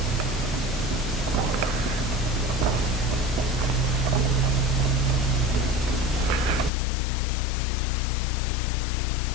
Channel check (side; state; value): right; drops out; at 6.7 s